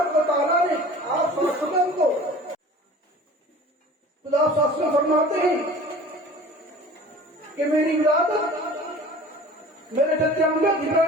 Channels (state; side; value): normal; both; correlation 0.43